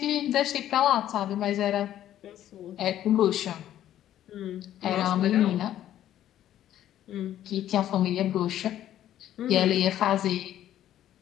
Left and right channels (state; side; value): quieter; right; 11.9 dB